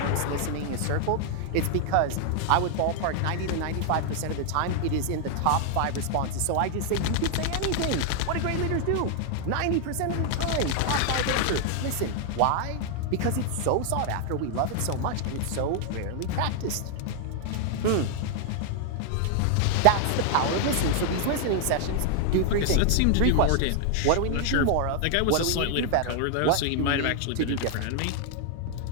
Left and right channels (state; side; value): different; both; correlation 0.00